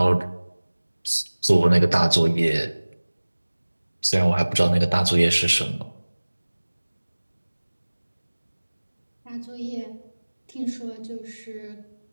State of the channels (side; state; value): both; inverted; correlation -1.00